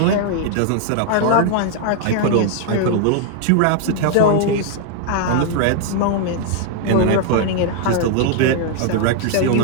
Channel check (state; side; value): different; both; correlation 0.00